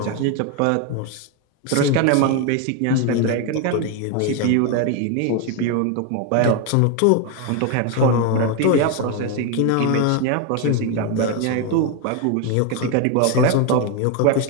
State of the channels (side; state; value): both; different; correlation 0.01